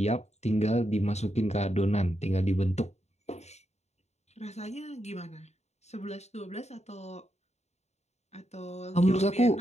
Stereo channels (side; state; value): right; late; 0.32 ms